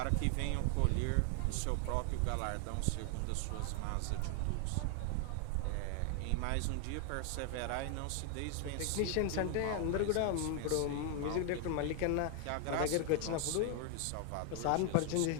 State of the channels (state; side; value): different; both; correlation 0.00